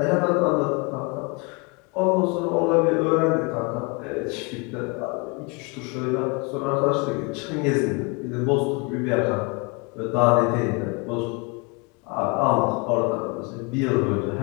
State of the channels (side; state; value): right; quieter; 30.6 dB